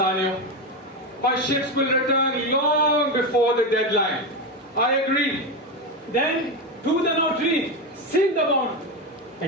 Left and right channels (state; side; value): normal; both; correlation 0.14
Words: My ships will return long before the deadline. I agree. Then, to the notary, seal the bond.